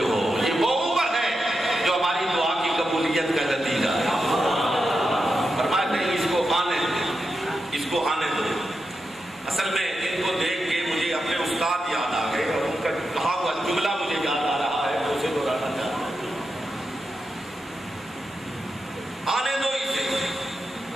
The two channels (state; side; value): normal; both; correlation 0.88